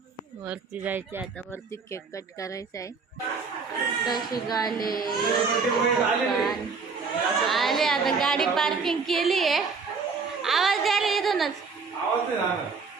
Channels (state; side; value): quieter; left; 5.0 dB